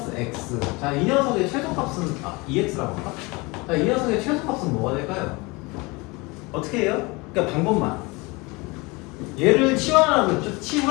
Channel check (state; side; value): quieter; right; 25.5 dB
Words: x. 자, 이 녀석의 최소값은 2x라고 할까? 자, 이 녀석의 최소값은 뭐가 될까요? 어떻게 해요? 그러니까 방법만. 얘를 치환하라고 했죠.